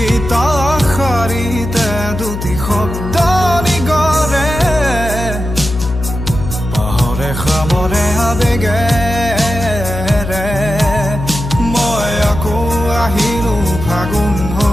শাৰীতে দুটি শব্দ নিগৰে পাহৰে খামৰে আবেগেৰে মই আকৌ আহিলো ফাগুন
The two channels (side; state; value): left; noise; hum, 6 dB below the sound